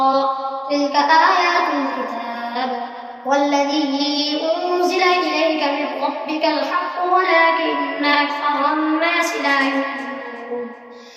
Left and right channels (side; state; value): both; identical; correlation 1.00